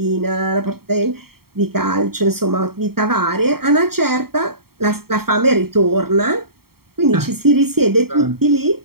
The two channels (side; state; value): left; late; 0.95 ms